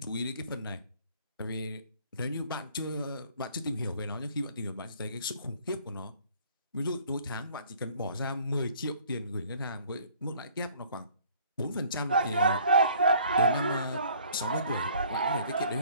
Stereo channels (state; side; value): inverted; both; correlation -0.55